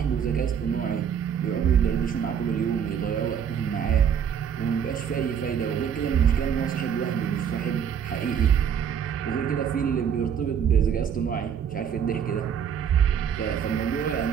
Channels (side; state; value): left; quieter; 8.0 dB